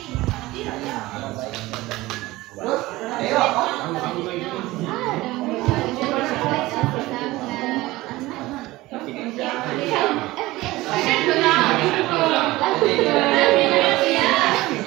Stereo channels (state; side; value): quieter; left; 18.9 dB